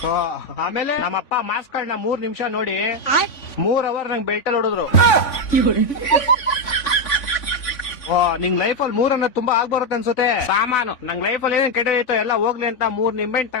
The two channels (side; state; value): right; late; 3.5 ms